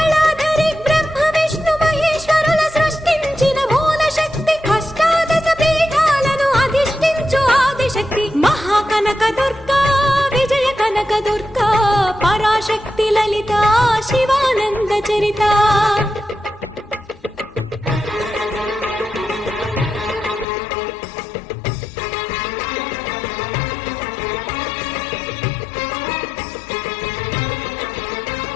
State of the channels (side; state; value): right; drops out; at 20.5 s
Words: ब्रह्म विष्णु महेश्वरुల సృష్టించిన మూల శక్తి అష్టాదశ పీఠాలను అధిష్ఠించు ఆదిశక్తి महाकनक दुर्गा विजय कनक दुर्गा पराशक्ति ललिता शिवानंद चरिता।